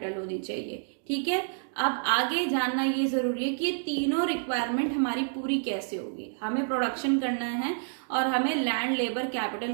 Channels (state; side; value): silent; left; digital silence